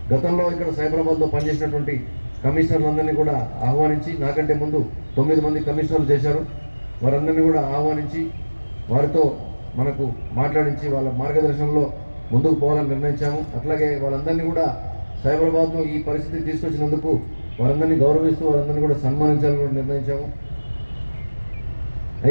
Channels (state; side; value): inverted; both; correlation -1.00